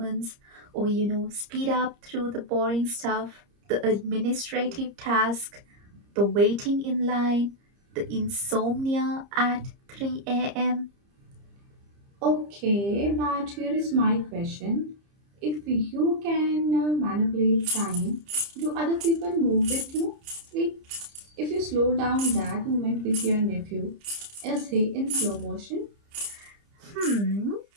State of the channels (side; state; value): left; late; 30 ms